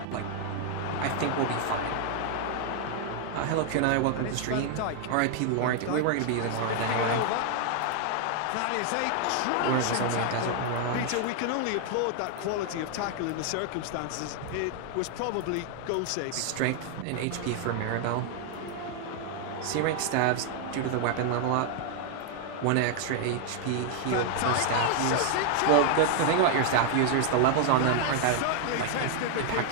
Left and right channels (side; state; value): both; different; correlation 0.00